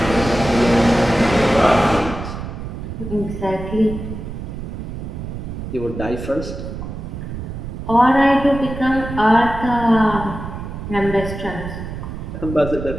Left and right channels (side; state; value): right; noise; rumble, 8 dB below the sound